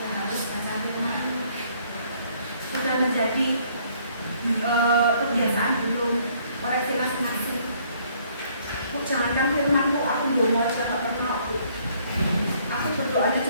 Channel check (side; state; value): both; inverted; correlation -0.63